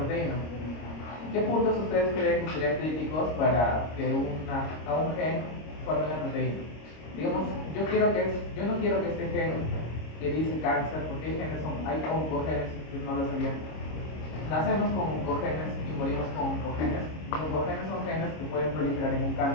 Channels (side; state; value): right; late; 26 ms